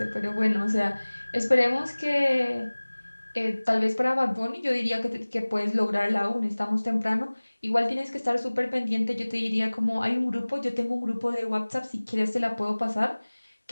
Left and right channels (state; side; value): inverted; both; correlation -1.00